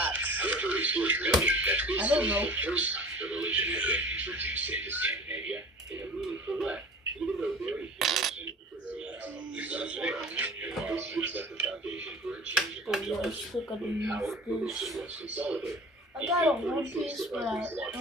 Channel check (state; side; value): normal; both; correlation 0.42